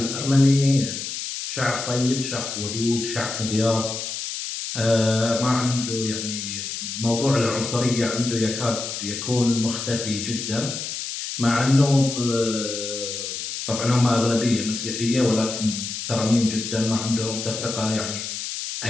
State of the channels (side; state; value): left; noise; hiss, 6 dB below the sound